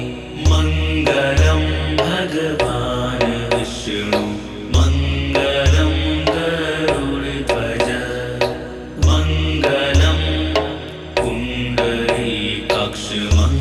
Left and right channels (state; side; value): identical; both; correlation 1.00